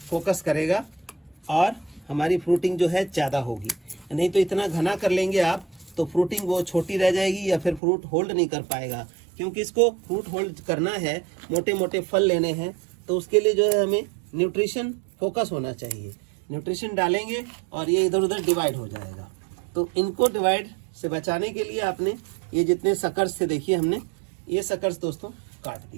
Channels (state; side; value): drops out; left; at 7.8 s